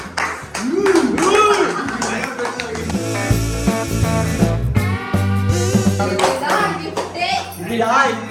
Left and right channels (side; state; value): both; identical; correlation 1.00